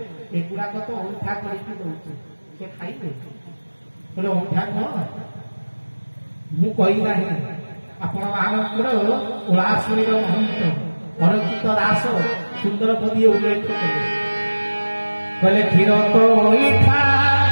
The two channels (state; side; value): inverted; both; correlation -1.00